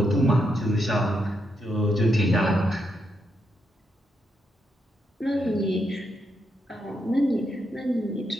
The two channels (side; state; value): both; normal; correlation 0.81